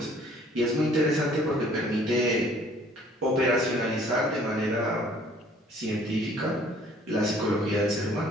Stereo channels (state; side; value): normal; both; correlation 0.57